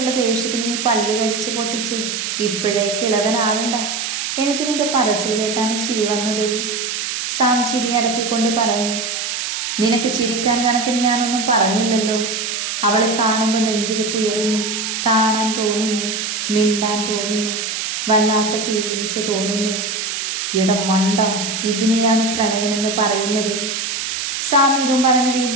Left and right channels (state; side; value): noise; right; hiss, 3 dB below the sound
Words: ദേഷ്യത്തിന് നീ പല്ല് കടിച്ച് പൊട്ടിച്ചേ ഇപ്പോഴേ കിളവനാവണ്ട. എനിക്ക് നിന്റെ പറച്ചിൽ കേട്ടാണ് ചിരി വന്നത്. സാം ചിരി അടക്കിക്കൊണ്ട് പറഞ്ഞു. നിനക്ക് ചിരിക്കാൻ കണക്കിന് ഞാനൊന്നും പറഞ്ഞില്ലല്ലോ. അവളെ കാണുമ്പോൾ നെഞ്ചിടിപ്പ് ഉയരുന്നു, കാണാൻ തോന്നുന്നു, മിണ്ടാൻ തോന്നുന്നു, വല്ലാത്ത ഫീലിങ്സ് തോന്നുന്നു. ഇടം മണ്ട, ഇതിനെയാണ് പ്രണയമെന്ന് പറയുന്നത്. സാം ഇതും പറഞ്ഞ്